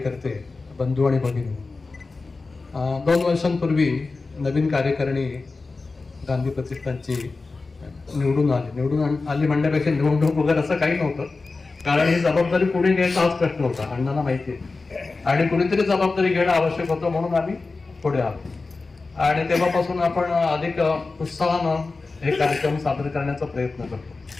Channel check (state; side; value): quieter; right; 3.8 dB